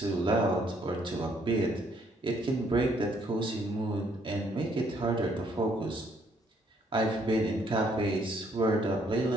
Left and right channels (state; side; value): normal; both; correlation 0.67